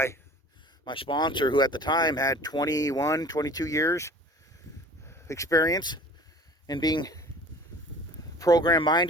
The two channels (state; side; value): normal; both; correlation 0.46